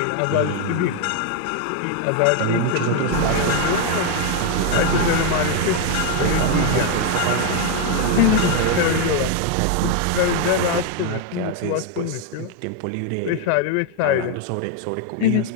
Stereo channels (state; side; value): different; both; correlation 0.01